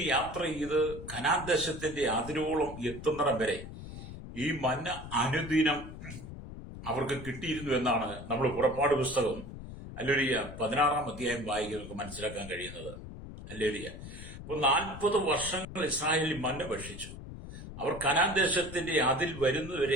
യാത്ര ചെയ്ത് കനാൻ ദേശത്തിന്റെ അതിരോളം എത്തുന്നിടം വരെ ഈ മന്ന അനുദിനം അവർക്ക് കിട്ടിയിരുന്നു എന്നാണ് നമ്മൾ പുറപ്പാട് പുസ്തകം ഹല്ലേലൂയ 16-ാം അധ്യായം വായിക്കുന്നവർക്ക് മനസ്സിലാക്കാൻ കഴിയുന്നത്. ഹല്ലേലൂയ. അപ്പോൾ 40 വർഷങ്ങൾ ഇസ്രായേലിൽ മന്ന ഭക്ഷിച്ചു. അവർ കനാൻ ദേശത്തിന്റെ അതിൽ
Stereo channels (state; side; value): noise; left; rumble, 12 dB below the sound